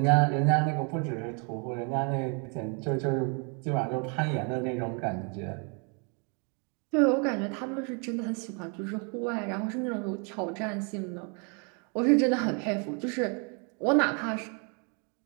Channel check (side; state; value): left; quieter; 36.4 dB